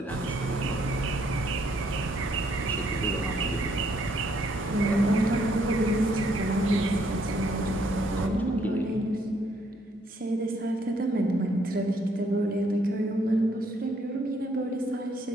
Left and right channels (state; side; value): normal; both; correlation 0.69